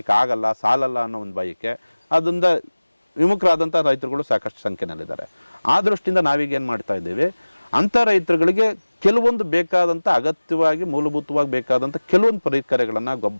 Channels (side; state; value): both; inverted; correlation -1.00